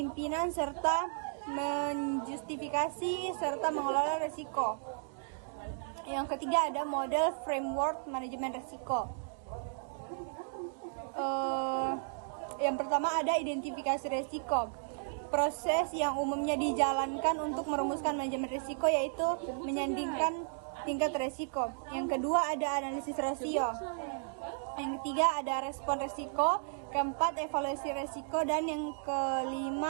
serta menjustifikasi serta mengelola risiko. yang ketiga ada model framework manajemen risiko. Yang pertama ada identifikasi risiko. Proses yang umumnya dijalankan untuk merumuskan manajemen risiko yaitu menyandingkan tingkat risiko. Yang kedua ada analisis rasio. Yang ketiga ada respon risiko. Keempat evaluasi risiko. Dan yang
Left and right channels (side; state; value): left; silent; digital silence